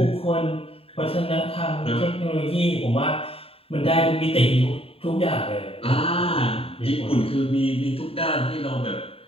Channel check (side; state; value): right; late; 0.27 ms